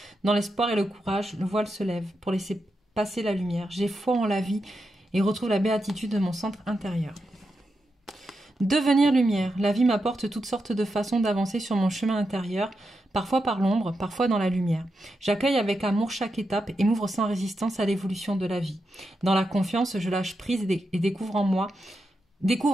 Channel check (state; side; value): normal; both; correlation 0.86